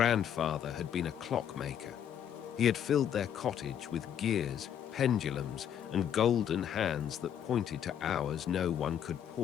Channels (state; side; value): quieter; right; 9.3 dB